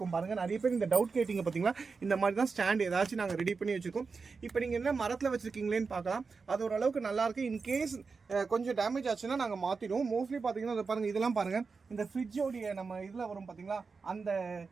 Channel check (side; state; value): left; quieter; 4.8 dB